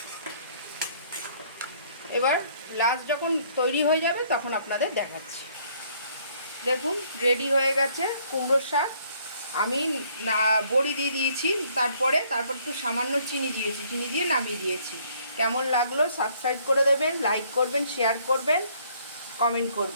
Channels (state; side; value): inverted; both; correlation -0.63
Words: এবার লাস্ট যখন তৈরি হয়ে যাবে তখন আপনাদের দেখাচ্ছি। দেখুন রেডি হয়ে গেছে কুমড়োর শাক। আমি বড়ি দিয়ে দিয়েছি, তারপর একটু সামান্য চিনি দিয়ে নামিয়ে দিয়েছি। কেমন লাগলো সাবস্ক্রাইব করে দেবেন, লাইক করবেন, শেয়ার করবেন, কমেন্ট